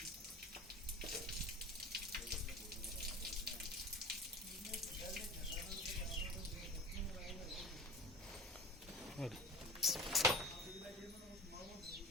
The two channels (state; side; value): normal; both; correlation 0.36